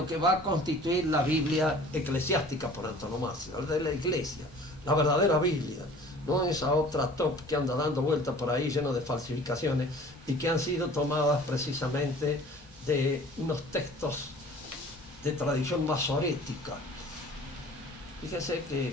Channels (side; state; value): both; normal; correlation 0.47